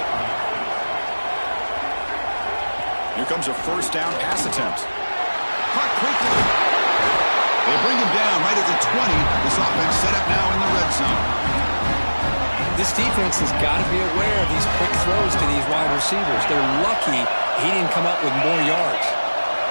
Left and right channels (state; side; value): inverted; both; correlation -1.00